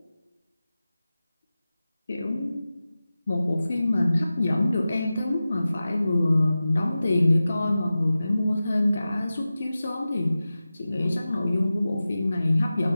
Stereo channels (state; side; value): inverted; both; correlation -0.95